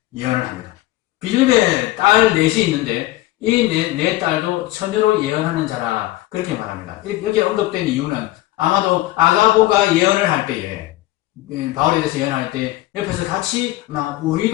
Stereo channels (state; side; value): quieter; right; 17.1 dB